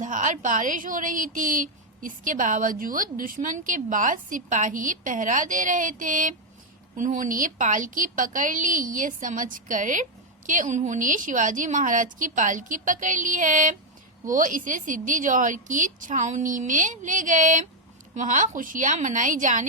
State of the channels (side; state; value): both; normal; correlation 0.01